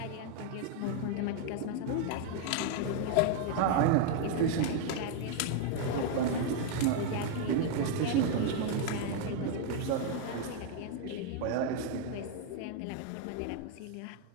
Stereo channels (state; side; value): different; both; correlation 0.00